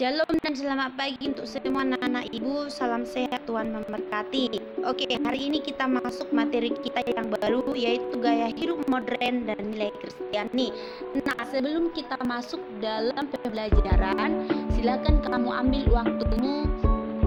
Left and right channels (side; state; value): both; identical; correlation 1.00